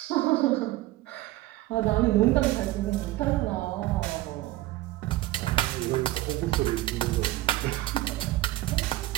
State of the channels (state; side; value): quieter; left; 16.7 dB